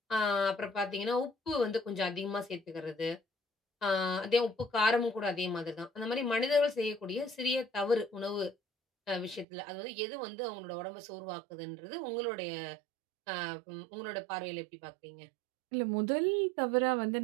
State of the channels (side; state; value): left; drops out; at 9.5 s